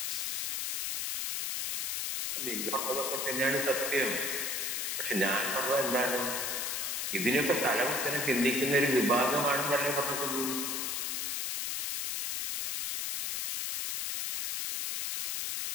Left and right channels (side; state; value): left; noise; hiss, 1 dB below the sound